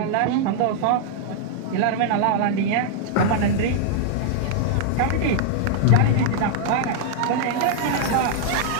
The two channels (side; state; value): both; different; correlation -0.01